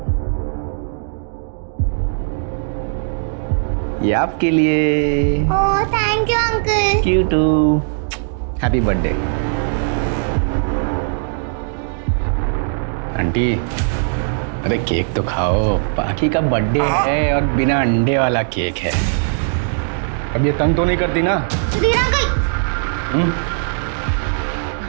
ये आपके लिए। Oh thank you uncle. You too. Happy birthday aunty. अरे केक तो खाओ, बाकी का बर्थडे है और बिना अंडे वाला केक है। अब ये तंग तो नहीं करती ना? सुधीर अंकल।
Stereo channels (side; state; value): left; silent; digital silence